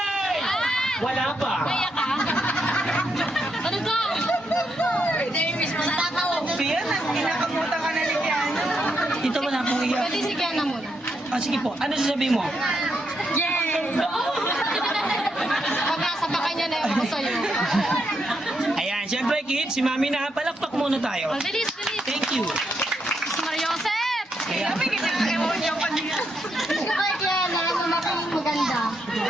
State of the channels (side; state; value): both; normal; correlation 0.80